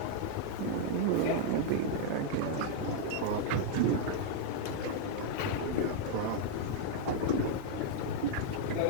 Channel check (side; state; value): both; different; correlation 0.00